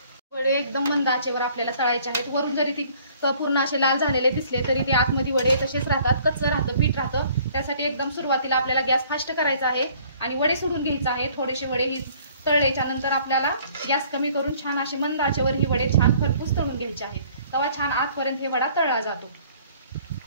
वडे एकदम मंद आचेवर आपल्याला तळायचे आहेत. वरून जरी ती पूर्ण असे लाल झालेले दिसले तरी ते आतमध्ये वडे तसेच राहतात, कच्चं राहतं, पीठ राहतं. त्यासाठी एकदम सुरुवातीला आपल्याला गॅस फास्ट करायचा आहे आणि वडे सोडून घ्यायचे आहे. थोडेसे वडे ही तळल्याच्या नंतर आपल्याला गॅस कमी करून छान असे मंद आचेवर ही वडे छान खरपूस तळून घ्यायचे आहेत. तेव्हा छान आतपर्यंत हे वडा तळला जातो.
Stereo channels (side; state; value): both; inverted; correlation -0.57